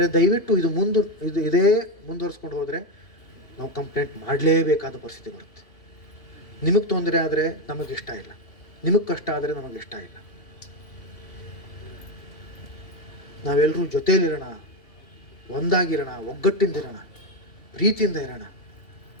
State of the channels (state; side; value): late; right; 2.8 ms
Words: ದಯವಿಟ್ಟು ಇದೇ ಮುಂದುವರಿಸ್ಕೊಂಡು ಹೋದರೆ ನಾವು ಕಂಪ್ಲೇಂಟ್ ಮಾಡಲೇಬೇಕಾದ ಪರಿಸ್ಥಿತಿ ಬರುತ್ತೆ. ನಿಮಗೆ ತೊಂದರೆ ಆದರೆ ನಮಗಿಷ್ಟ ಇಲ್ಲ, ನಿಮಗೆ ಕಷ್ಟ ಆದರೆ ನಮಗಿಷ್ಟ ಇಲ್ಲ. ನಾವೆಲ್ಲರೂ ಜೊತೆಯಲ್ಲಿರೋಣ, ಒಂದಾಗಿರೋಣ, ಒಗ್ಗಟ್ಟಿಂದಿರೋಣ, ಪ್ರೀತಿಯಿಂದ ಇರೋಣ.